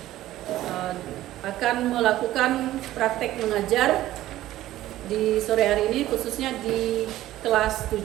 Akan melakukan praktek mengajar di sore hari ini, khususnya di kelas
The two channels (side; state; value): left; quieter; 14.7 dB